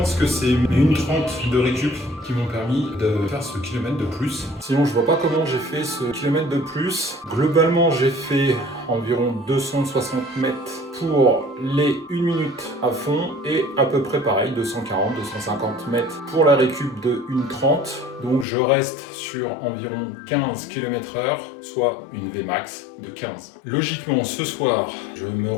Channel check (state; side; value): drops out; right; at 18.4 s